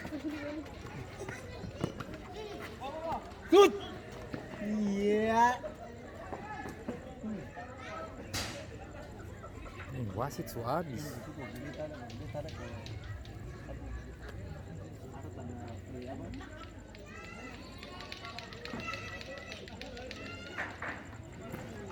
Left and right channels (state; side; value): identical; both; correlation 1.00